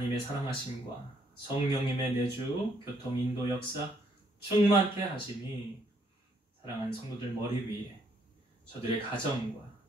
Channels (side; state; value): both; normal; correlation 0.70